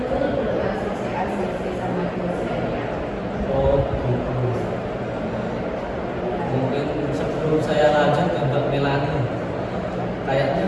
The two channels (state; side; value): identical; both; correlation 1.00